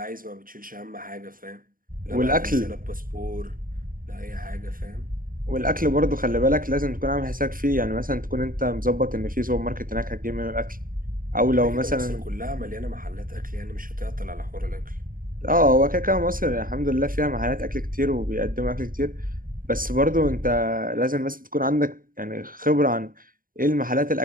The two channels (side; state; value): left; late; 0.41 ms